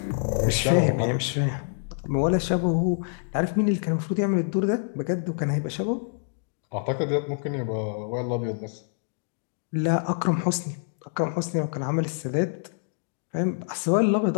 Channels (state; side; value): silent; right; digital silence